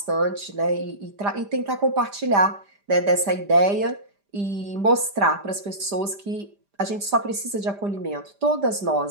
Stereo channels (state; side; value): late; left; 5.0 ms